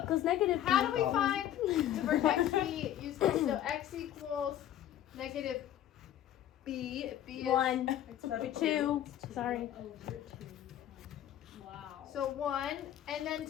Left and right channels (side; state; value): right; quieter; 11.7 dB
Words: equals negative How b. do we find the vertex b? Use this. So x equals negative b. If b is 1, 2. Sorry. Wow. so 1, and then